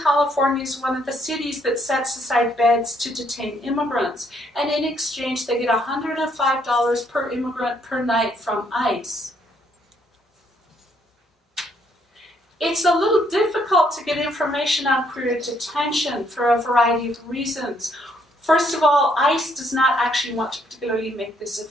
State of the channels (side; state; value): both; normal; correlation 0.70